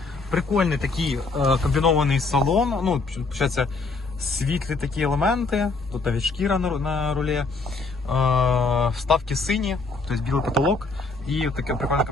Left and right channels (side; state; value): right; quieter; 3.8 dB